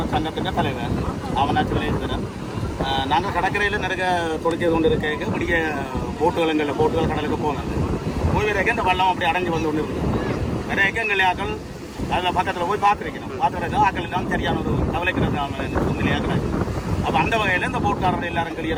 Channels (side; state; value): both; identical; correlation 1.00